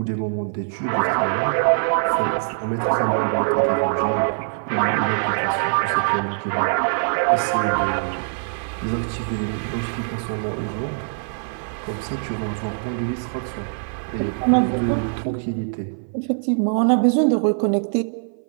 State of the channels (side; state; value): left; silent; 56 dB below the other